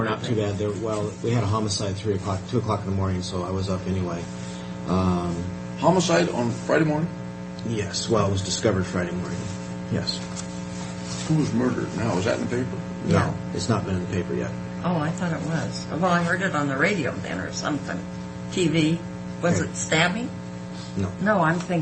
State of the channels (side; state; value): both; identical; correlation 1.00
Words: not too bad. We had a homicide 2 o'clock in the morning, so I was up anyway. Homicide on Friday morning? Yes. Well, it was discovered Friday morning. Yes. Who was murdered? Now, was that in the paper? No, Yeah. it's not been in the paper yet. Oh, I thought it was. Well, I heard it on the radio then or something. TV. Was Okay. it stabbing? No. No, I'm